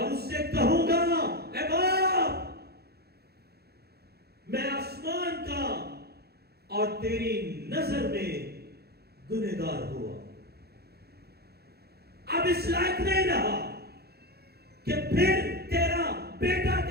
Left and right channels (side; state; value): left; late; 0.46 ms